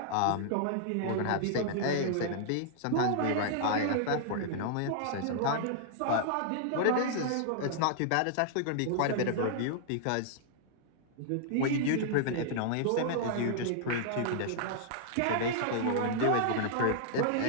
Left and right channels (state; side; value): different; both; correlation -0.01